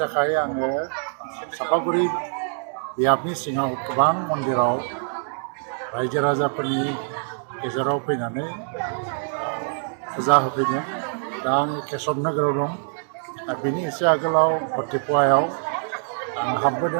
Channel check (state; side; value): silent; left; 62 dB below the other